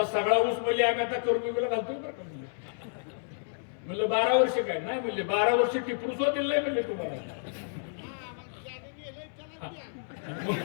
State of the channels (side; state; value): right; silent; 58 dB below the other